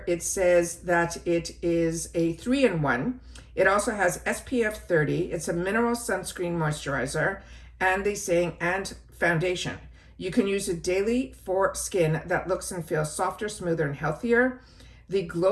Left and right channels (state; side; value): identical; both; correlation 1.00